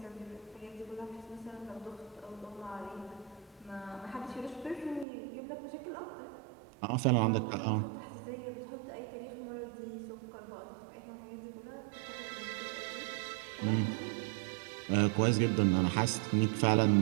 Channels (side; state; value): left; drops out; at 5.1 s